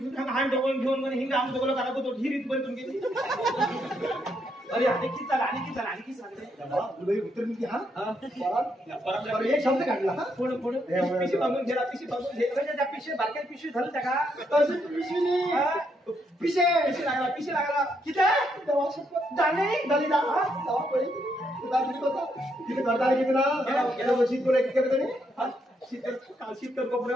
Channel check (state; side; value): normal; both; correlation 0.77